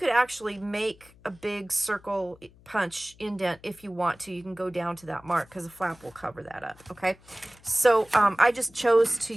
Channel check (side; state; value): left; noise; hum, 26 dB below the sound